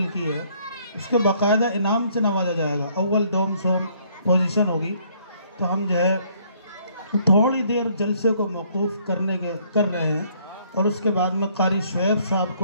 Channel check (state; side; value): inverted; both; correlation -0.65